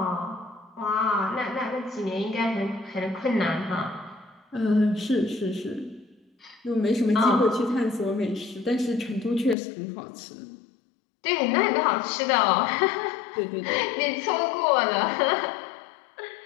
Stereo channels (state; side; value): drops out; right; at 9.6 s